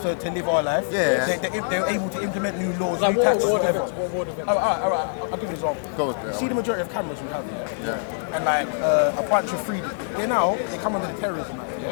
live our life. They're able to implement new laws, new taxes, whatever. Alright, I'll give you an example. You see the majority of cameras we have here, and like a bunch of freedom. They come under the Terrorism Act,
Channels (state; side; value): silent; right; 62 dB below the other